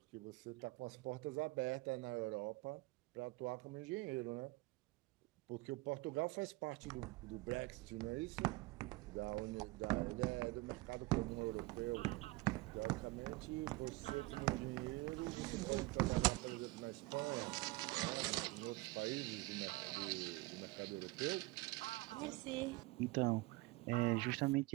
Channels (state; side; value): quieter; left; 22.1 dB